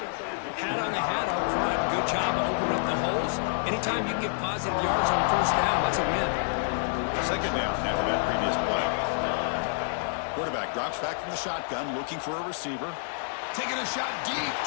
on the hat up front. Good job of opening up the holes. Anytime you can get positive yards on 1st down, that's a win. 2nd down after that previous play. Quarterback drops back from the shotgun, looking for a receiver. Taking a shot deep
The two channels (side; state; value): right; silent; digital silence